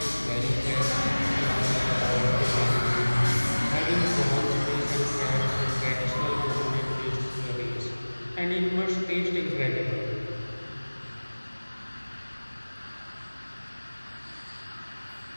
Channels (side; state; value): both; inverted; correlation -1.00